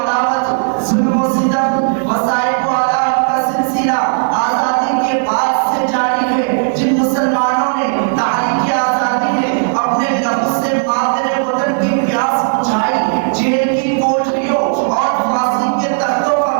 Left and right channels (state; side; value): silent; left; digital silence